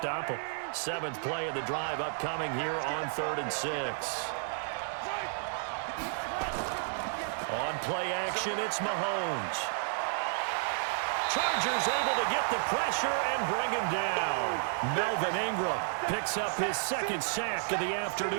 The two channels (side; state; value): left; silent; digital silence